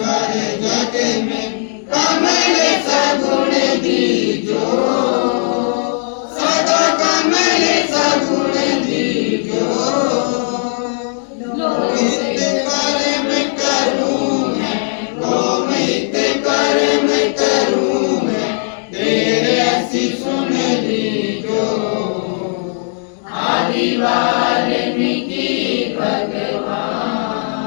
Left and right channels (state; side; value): silent; right; digital silence